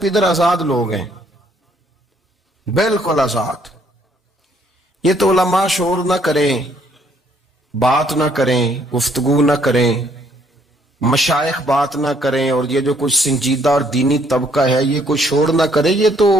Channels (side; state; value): both; normal; correlation 0.66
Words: آزاد لوگ ہیں، بالکل آزاد۔ یہ تو علماء شور نہ کریں، بات نہ کریں، گفتگو نہ کریں، مشائخ بات نہ کریں، اور یہ جو کچھ سنجیدہ اور دینی طبقہ ہے یہ کچھ شور نہ کرے، یہ تو